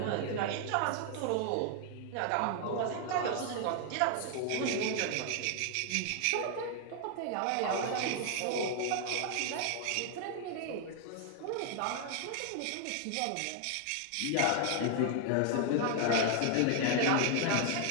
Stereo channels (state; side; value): different; both; correlation 0.00